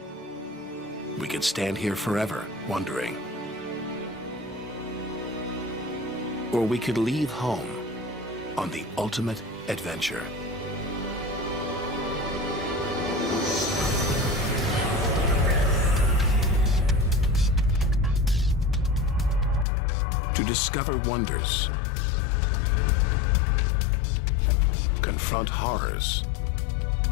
We could stand here forever wondering. Or we could leave home on the ultimate adventure. To discover wonders, confront horrors,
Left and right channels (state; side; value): drops out; right; at 19.7 s